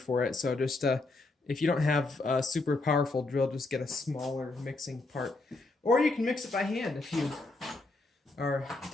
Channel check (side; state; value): right; quieter; 3.2 dB